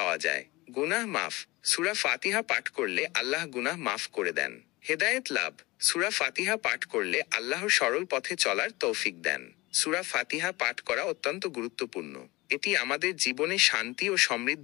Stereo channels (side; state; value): right; quieter; 21.6 dB